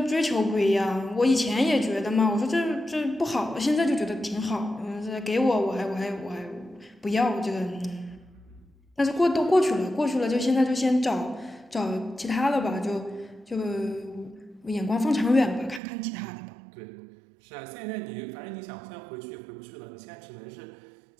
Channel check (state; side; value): drops out; left; at 15.8 s